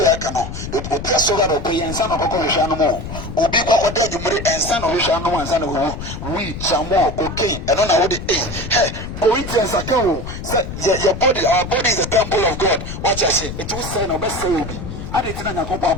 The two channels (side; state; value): left; noise; rumble, 8 dB below the sound